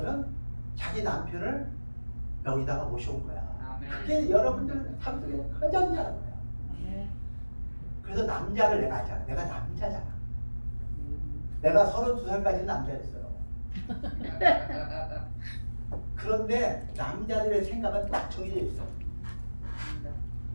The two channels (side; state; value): both; inverted; correlation -1.00